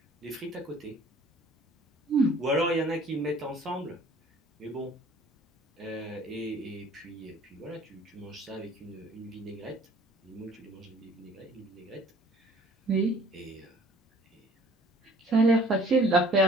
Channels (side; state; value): both; normal; correlation 0.54